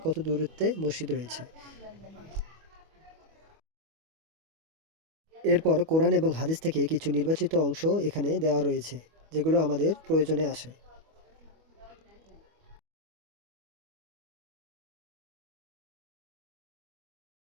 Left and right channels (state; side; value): late; left; 25 ms